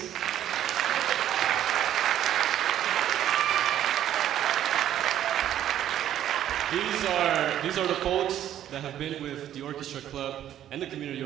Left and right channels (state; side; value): quieter; left; 11.4 dB